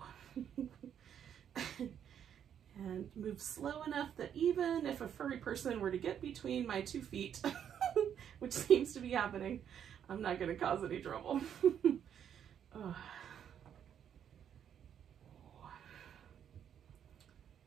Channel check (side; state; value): left; quieter; 9.0 dB